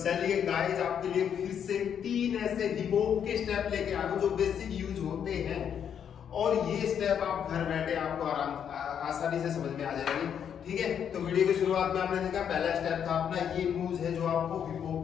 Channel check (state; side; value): quieter; right; 8.4 dB